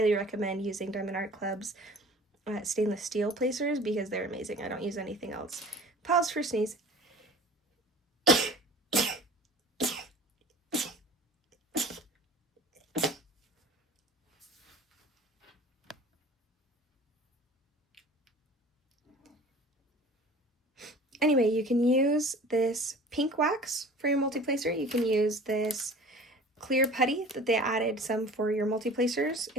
recommend using Diamond Art Club's stainless steel placers because they're amazing. I don't use anything else. Pause for sneeze. Anyway, you can use this pink wax for your multi-placer. You can use this clear putty that they added some for your multi-placers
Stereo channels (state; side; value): normal; both; correlation 0.44